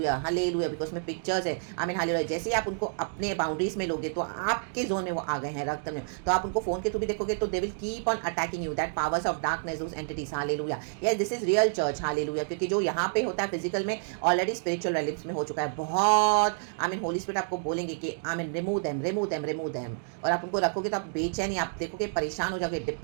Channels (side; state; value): left; silent; digital silence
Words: हालेलुया, बिकॉज में पिक्चर्स है, आमीन, हालेलुया। जैसे ही आप उनको अपने बाउंड्रीज में लोगे तो आपके जोन में वो आ गए हैं, रक्तम जयम। तो आप उनको फोन के थ्रू भी देखोगे तो दे will keep on attacking you, that powers of darkness, those entities, hallelujah. Yes, this is real church, hallelujah, क्योंकि जो यहाँ पे होता है फिजिकल में ऑलरेडी स्पिरिचुअल रिलेम्स में हो चुका है बहुत, आमीन। होली स्पिरिट आपको बोलेंगे कि आमीन, रिमूव देम, और आप उनको रखोगे तो आप बेचैनी, आप देखोगे परेशान हो जाओगे,